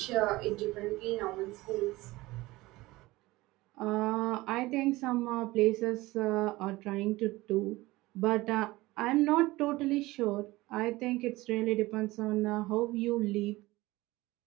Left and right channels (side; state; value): left; quieter; 19.7 dB